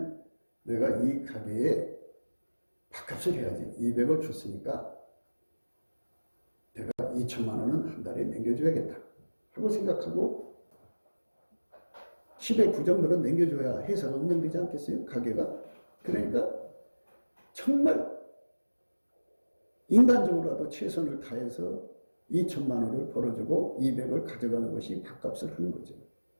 내가 이 가게에 밥값을 해야지. 200을 줬으니까 내가 2천만 원은 한 달에 남겨줘야겠다 하고 생각하고 10의 9 정도는 남겨줘야 회사가 운영되지 않겠어요? 가게가. 그러니까 정말 인간적으로라도 최선을 다해서 2천만 원을 벌어주고 200을 가져가는 것이 밥값을 하는 거죠.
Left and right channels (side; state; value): both; inverted; correlation -1.00